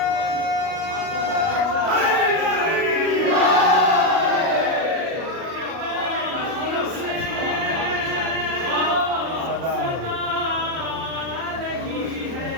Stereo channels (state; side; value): late; left; 37 ms